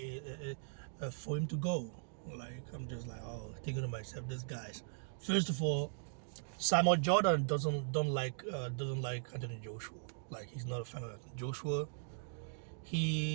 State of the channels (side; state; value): left; silent; digital silence